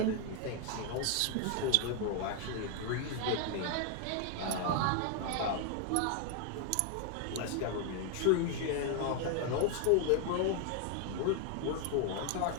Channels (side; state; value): both; different; correlation 0.01